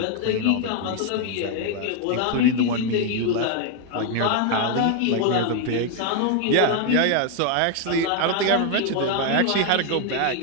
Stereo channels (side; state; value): both; different; correlation 0.01